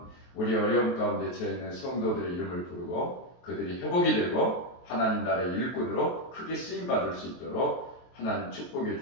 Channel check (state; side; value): late; right; 23 ms